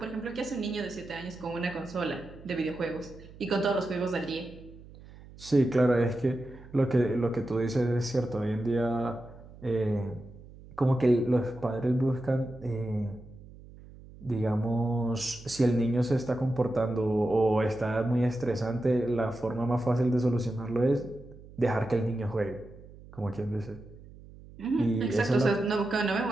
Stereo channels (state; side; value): noise; right; hum, 19 dB below the sound